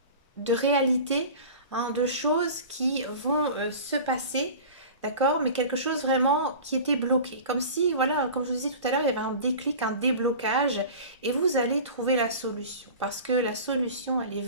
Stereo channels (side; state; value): both; inverted; correlation -0.37